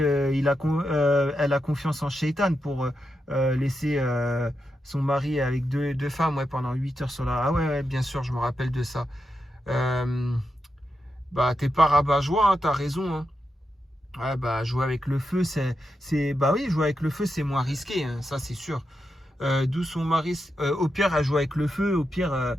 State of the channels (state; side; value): normal; both; correlation 0.86